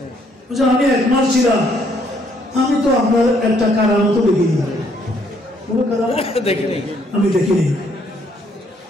আমি এক মাস ছিলাম, আমি তো আপনার একটা কারামত দেখিনি, কোনো কারামত দেখিনি, আমি দেখিনি,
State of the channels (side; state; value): both; normal; correlation 0.68